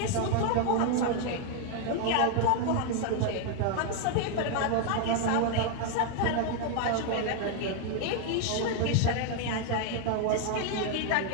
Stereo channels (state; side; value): different; both; correlation 0.00